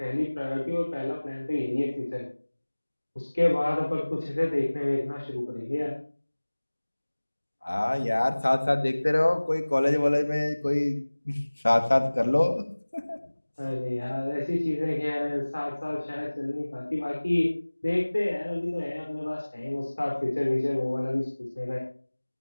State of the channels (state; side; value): inverted; both; correlation -1.00